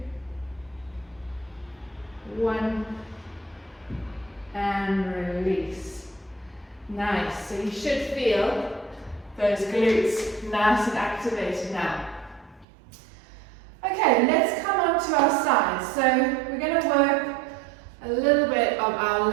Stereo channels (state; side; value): drops out; left; at 12.7 s